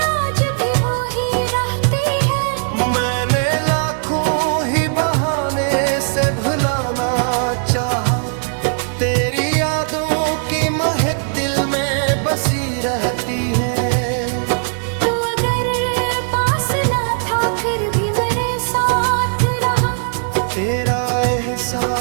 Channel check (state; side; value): silent; left; 67 dB below the other